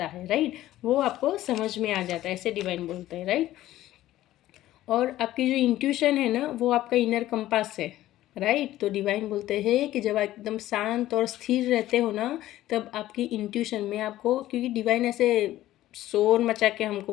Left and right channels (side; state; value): right; quieter; 14.6 dB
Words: है, राइट, वो आपको समझ में आ जाता है, ऐसे डिवाइन बोलते हैं, राइट। और आपकी जो इंट्यूशन है ना, वो आपका इनर कंपास है, राइट। तो डिवाइन बोलते हैं कि जब आप एकदम शांत और स्थिर रहते हो ना, तब आपकी इंट्यूशन में आपको, क्योंकि डिवाइन ऐसे शोर मचा के हमको